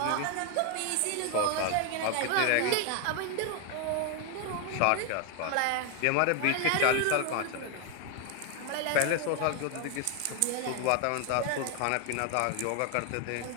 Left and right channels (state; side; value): different; both; correlation 0.01